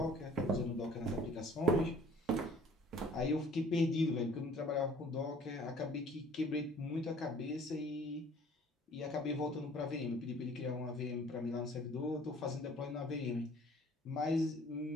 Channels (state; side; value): normal; both; correlation 0.53